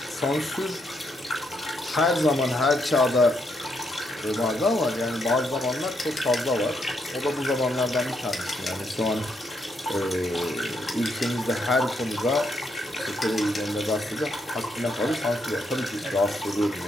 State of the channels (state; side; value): normal; both; correlation 0.77